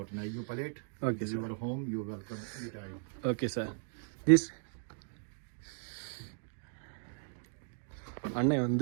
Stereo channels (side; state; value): left; silent; digital silence